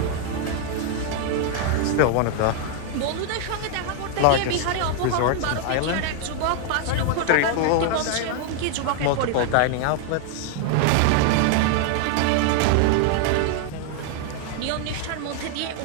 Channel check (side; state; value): both; different; correlation 0.00